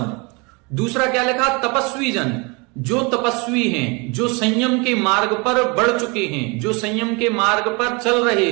दूसरा क्या लिखा? तपस्वी जन, जो तपस्वी हैं, जो संयम के मार्ग पर बढ़ चुके हैं, जो संयम के मार्ग पर चल रहे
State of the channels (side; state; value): left; quieter; 29.2 dB